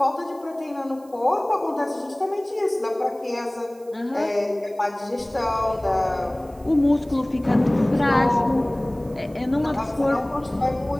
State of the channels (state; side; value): noise; right; hiss, 28 dB below the sound